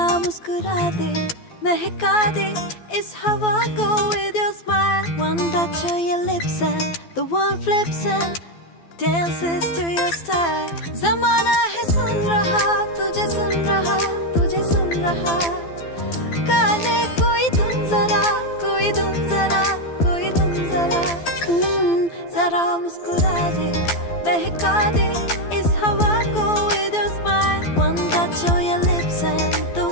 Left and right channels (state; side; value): late; right; 12 ms